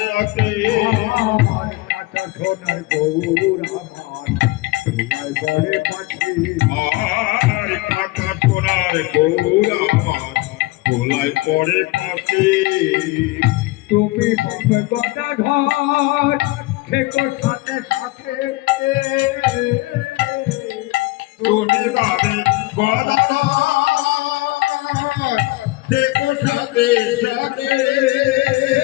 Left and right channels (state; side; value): quieter; right; 20.5 dB